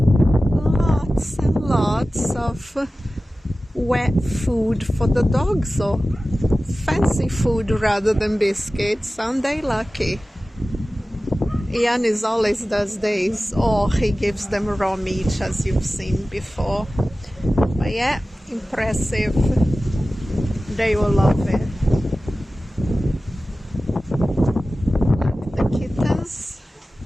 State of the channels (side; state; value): both; normal; correlation 0.96